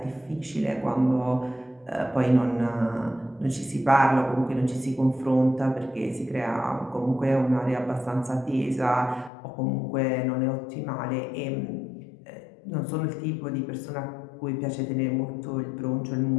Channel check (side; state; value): right; drops out; at 9.3 s